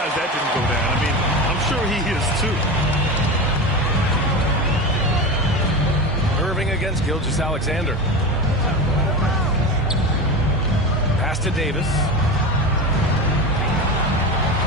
that didn't go down. I mean, I'm sure he is too. Irving against Gilgeous-Alexander. Pass to Davis.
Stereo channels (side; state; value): both; normal; correlation 0.25